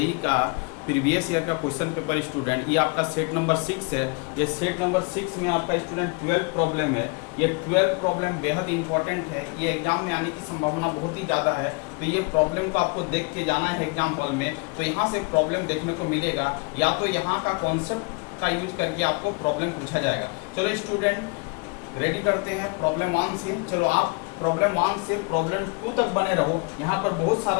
का प्रीवियस ईयर का क्वेश्चन पेपर। स्टूडेंट, ये आपका सेट नंबर 6 है। ये सेट नंबर 6 में आपका स्टूडेंट 12 प्रॉब्लम है। ये 12 प्रॉब्लम बेहद इंपॉर्टेंट है। ये एग्जाम में आने की संभावना बहुत ही ज़्यादा है, तो ये प्रॉब्लम को आपको देख के जाना है एग्जाम हॉल में। तो यहाँ से प्रॉब्लम देखने को मिलेगा, या तो यहाँ का कॉन्सेप्ट का यूज करके आपको प्रॉब्लम पूछा जाएगा। चलो स्टूडेंट, रेडी करते हैं प्रॉब्लम 1 से। चलो आप प्रॉब्लम 1 से प्रॉब्लम 2 तक बने रहो। यहाँ पर बहुत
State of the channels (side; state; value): right; quieter; 31.2 dB